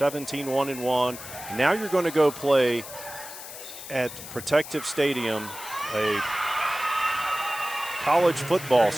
now you're going to go play at Protective Stadium, a college football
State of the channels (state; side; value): noise; left; hiss, 12 dB below the sound